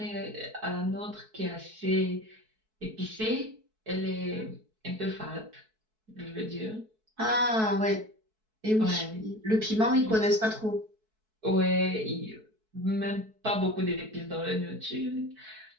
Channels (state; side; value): late; left; 4.6 ms